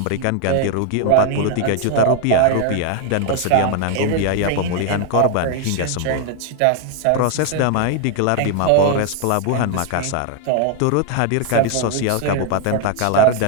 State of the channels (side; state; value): both; different; correlation 0.00